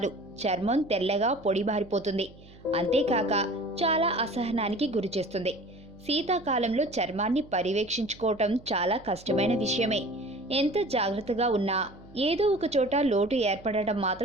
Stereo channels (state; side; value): noise; right; hum, 22 dB below the sound